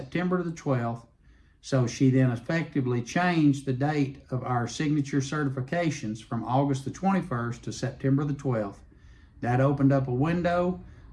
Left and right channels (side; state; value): both; identical; correlation 1.00